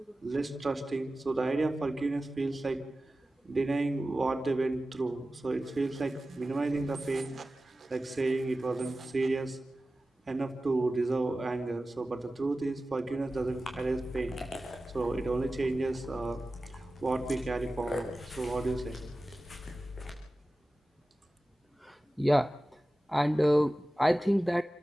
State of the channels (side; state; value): both; normal; correlation 0.95